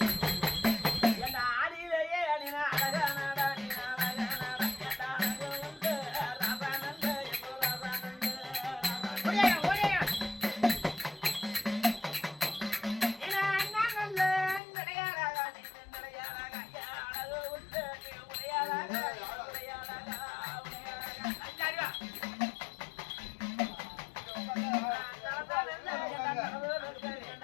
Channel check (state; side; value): drops out; right; at 14.6 s